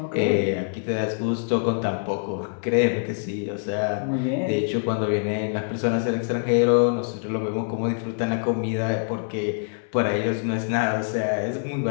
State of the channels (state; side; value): silent; right; 62 dB below the other